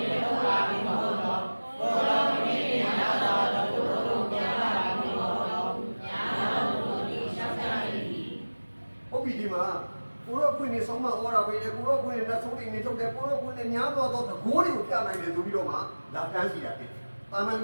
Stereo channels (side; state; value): both; inverted; correlation -1.00